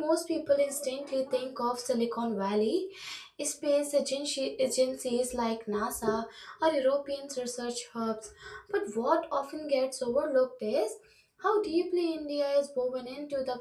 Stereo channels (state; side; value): identical; both; correlation 1.00